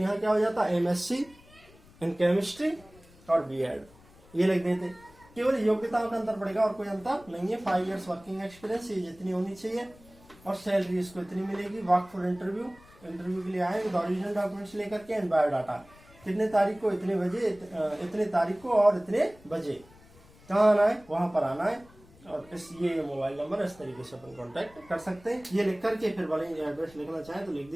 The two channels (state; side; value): noise; left; rumble, 25 dB below the sound